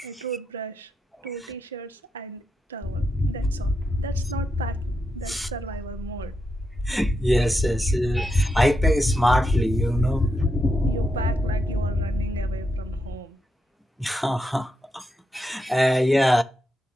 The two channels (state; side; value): normal; both; correlation 0.84